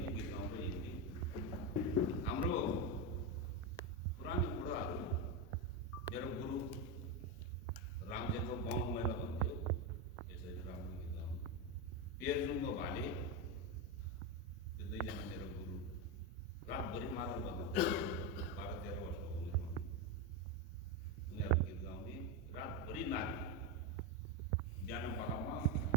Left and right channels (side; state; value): both; normal; correlation 0.11